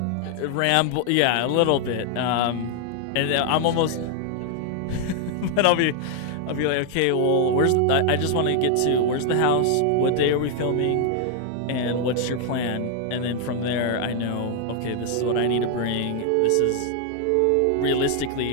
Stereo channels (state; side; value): different; both; correlation 0.00